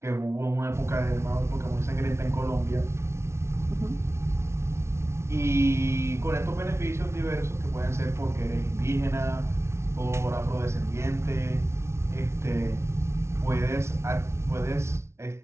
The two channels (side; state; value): left; late; 0.13 ms